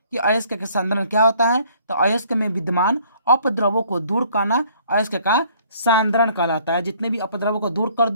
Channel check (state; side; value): inverted; both; correlation -0.60